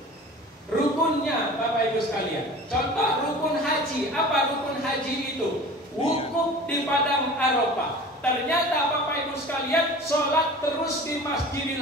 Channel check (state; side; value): normal; both; correlation 0.40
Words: Rukunnya Bapak Ibu sekalian. Contoh rukun haji. Apa rukun haji itu? Wukuf di padang Arafah. Ternyata Bapak Ibu sekalian sholat terus di